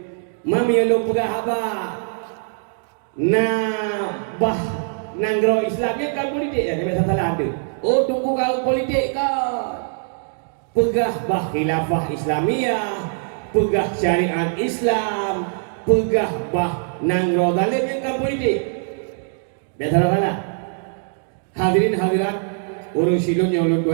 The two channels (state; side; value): silent; left; 64 dB below the other